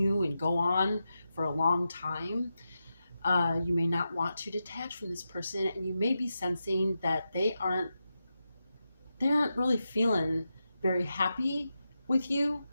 and go on for a long time. You may not want to detach from this person, and you may be sensing that they aren't really feeling very happy with you,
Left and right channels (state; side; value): inverted; both; correlation -0.89